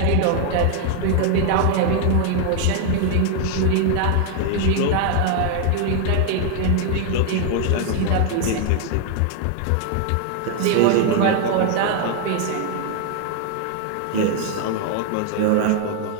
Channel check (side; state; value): both; different; correlation 0.00